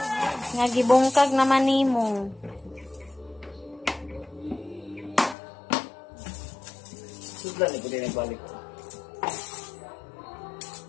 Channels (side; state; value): right; drops out; at 5.4 s